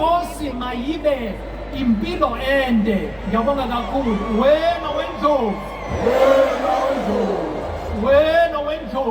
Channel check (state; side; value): identical; both; correlation 1.00